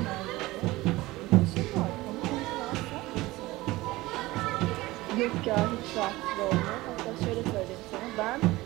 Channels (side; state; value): left; quieter; 19.4 dB